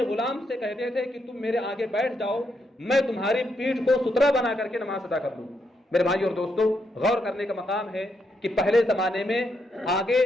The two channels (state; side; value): normal; both; correlation 0.79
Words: غلام سے کہتے تھے کہ تم میرے آگے بیٹھ جاؤ، میں تمہاری پیٹھ کو سترہ بنا کر کے نماز ادا کر دوں۔ میرے بھائی اور دوستو، غور کرنے کا مقام ہے کہ پہلے زمانے میں آگے